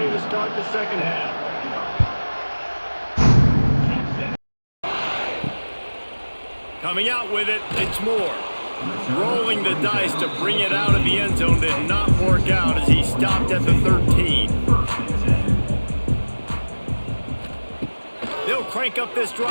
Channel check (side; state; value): both; inverted; correlation -1.00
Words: to start the second half. Coming out with it, it's Moore. Rolling the dice to bring it out of the end zone did not work out as he stopped at the 13. They'll crank up this